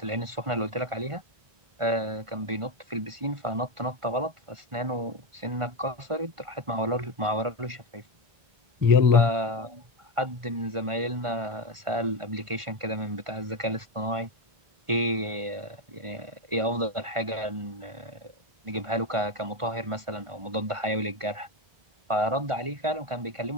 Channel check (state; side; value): late; left; 1.5 ms